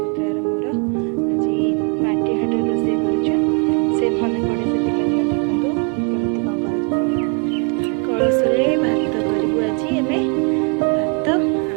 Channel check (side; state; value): left; quieter; 35.7 dB